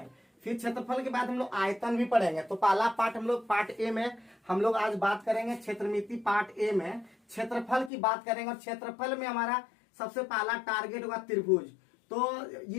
फिर क्षेत्रफल के बाद हम लोग आयतन भी पढ़ेंगे। तो पहला पार्ट हम लोग पार्ट ए में हम लोग आज बात करेंगे क्षेत्रमिति। पार्ट ए में क्षेत्रफल की बात करेंगे और क्षेत्रफल में हमारा सबसे पहला टारगेट होगा त्रिभुज। तो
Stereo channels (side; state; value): right; drops out; at 7.9 s